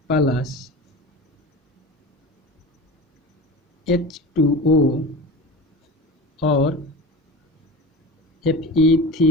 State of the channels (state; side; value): normal; both; correlation 0.32